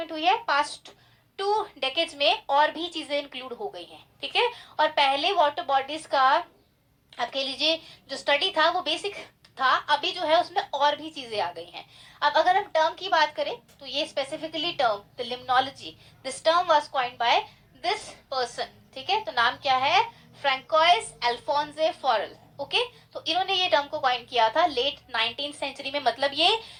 हुई है past 2 डेकेड्स में और भी चीजें इंक्लूड हो गई हैं. ठीक है, और पहले वाटर बॉडीज का आप कह लीजिए जो स्टडी था वो बेसिक था, अभी जो है उसमें और भी चीजें आ गई हैं. अब अगर हम टर्म की बात करें तो ये specifically term the limnology, this term was coined by this person. ठीक है, तो नाम क्या है? फ्रैंकोइस अल्फोंसे फॉरेल. ओके, तो इन्होंने ये टर्म को कॉइन किया था लेट 19th सेंचुरी में. मतलब ये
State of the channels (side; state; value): both; identical; correlation 1.00